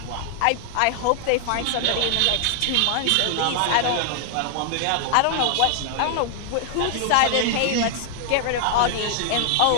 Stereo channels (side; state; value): both; different; correlation 0.00